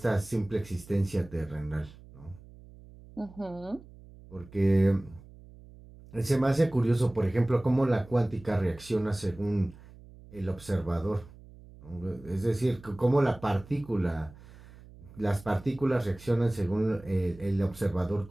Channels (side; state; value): right; noise; hum, 20 dB below the sound